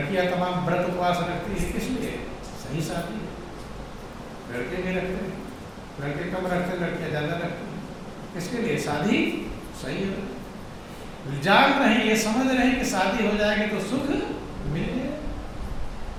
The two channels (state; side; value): identical; both; correlation 1.00